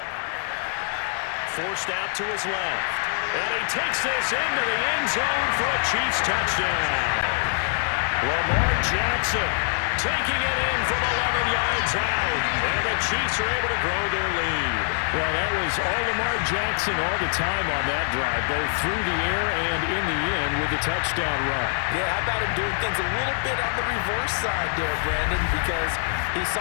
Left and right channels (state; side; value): silent; right; digital silence